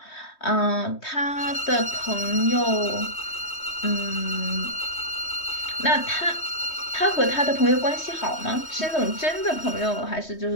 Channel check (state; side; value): late; right; 3.2 ms